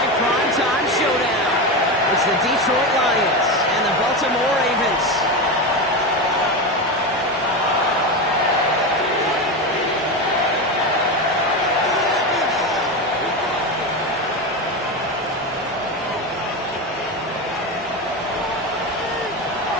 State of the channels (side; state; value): both; normal; correlation 0.18